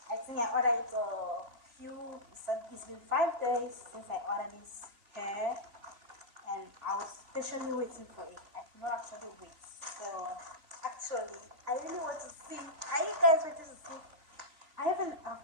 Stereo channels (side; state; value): left; late; 4.0 ms